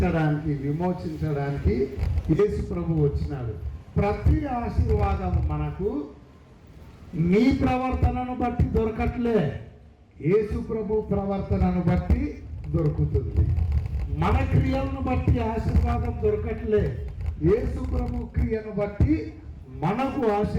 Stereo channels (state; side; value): identical; both; correlation 1.00